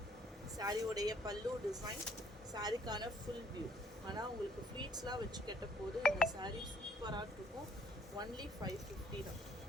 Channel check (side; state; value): both; normal; correlation 0.63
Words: சாரியோடைய பல்லு டிசைன், சாரிக்கான ஃபுல் வியூ. ஆனால் உங்களுக்கு ஃப்ளீட்ஸ்லாம் வச்சு கட்ட போது இந்த சாரீ சூப்பராக இருக்கும். ஒன்லி 550 தான்.